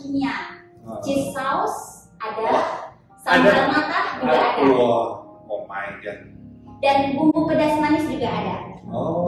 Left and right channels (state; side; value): identical; both; correlation 1.00